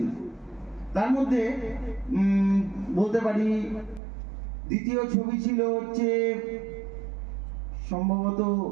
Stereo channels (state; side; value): drops out; left; at 4.0 s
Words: তার মধ্যে বলতে পারি দ্বিতীয় ছবি ছিল হচ্ছে সম্ভবত